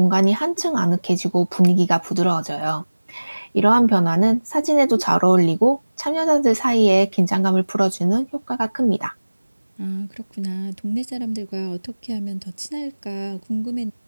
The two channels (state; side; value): inverted; both; correlation -1.00